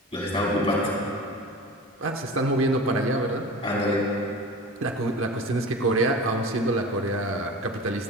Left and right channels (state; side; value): normal; both; correlation 0.35